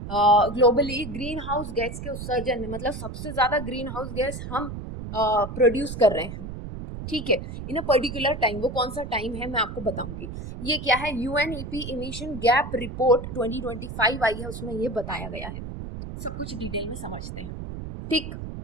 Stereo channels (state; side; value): noise; right; rumble, 8 dB below the sound